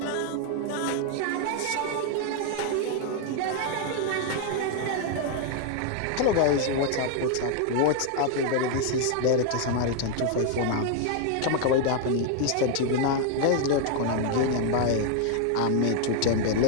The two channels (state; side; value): different; both; correlation 0.00